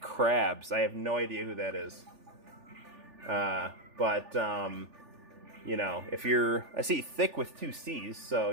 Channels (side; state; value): left; late; 3.4 ms